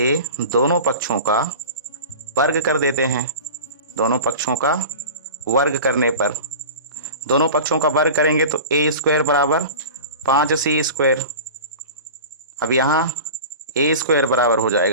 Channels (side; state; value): both; inverted; correlation -0.35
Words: दोनों पक्षों का वर्ग कर देते हैं। दोनों पक्षों का वर्ग करने पर, दोनों पक्षों का वर्ग करेंगे तो A स्क्वायर बराबर 5C स्क्वायर। अब यहाँ A स्क्वायर बराबर हो